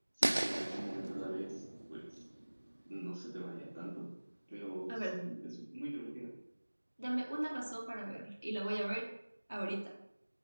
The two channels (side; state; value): both; inverted; correlation -1.00